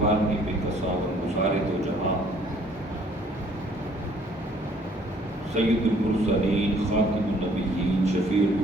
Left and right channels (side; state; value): both; normal; correlation 0.60